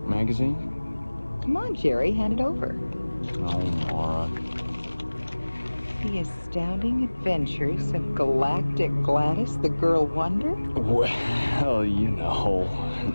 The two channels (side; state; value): both; inverted; correlation -1.00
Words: Magazine? Come on, Jerry, hand it over. Oh, Maura. The Astounding Adventures of Galactic Gladys, the Girl Wonder? Well, you know.